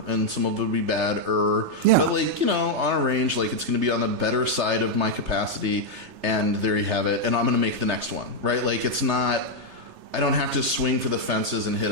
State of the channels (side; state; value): left; late; 3.3 ms